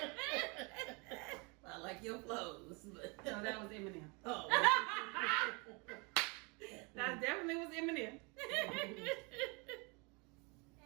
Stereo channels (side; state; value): left; quieter; 30.4 dB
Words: I like your clothes. But... No, that was Eminem. Oh. That definitely was Eminem.